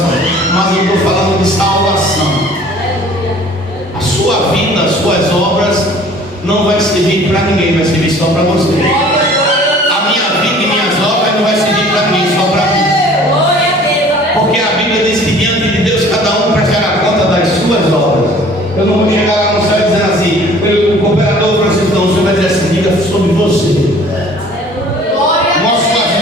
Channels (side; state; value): both; normal; correlation 0.50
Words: Mas eu estou falando de salvação. A sua vida, as suas obras não vai servir para ninguém, vai servir só para você. A minha vida e minhas obras não vai servir para ninguém, só para mim. Porque a Bíblia diz que diante de Deus cada um prestará conta das suas obras. Eu não vou chegar lá no céu dizendo assim, o cooperador Francisco, não, o senhor vai dizer assim, diga sobre você. Mostre as